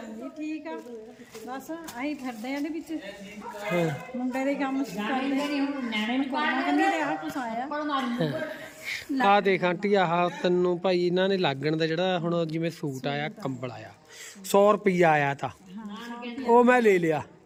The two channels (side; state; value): both; identical; correlation 1.00